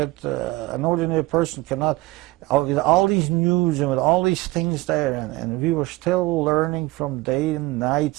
an ordinary person cannot. With all these news and with all these things there, and we were still learning from day and night,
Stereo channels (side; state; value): left; quieter; 20.0 dB